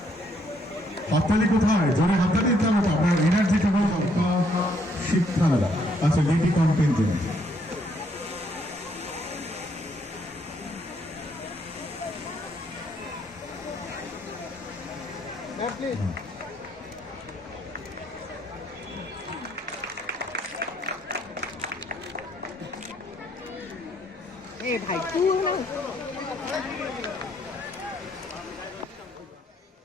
হাততালি কোথায়? জোরে হাততালি দিতে হবে, আপনার এনার্জিটা হল শিক্ষালয়। আচ্ছা, লেডি কন্টিনজেন্ট। ভাই তুই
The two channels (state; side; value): normal; both; correlation 0.69